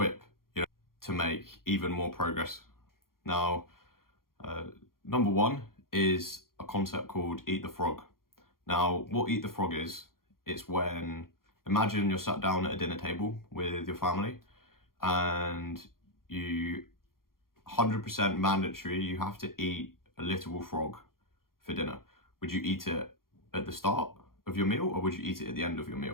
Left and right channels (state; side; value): late; right; 0.92 ms